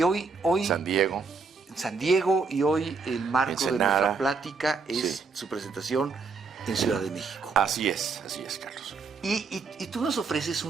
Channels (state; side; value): quieter; left; 4.7 dB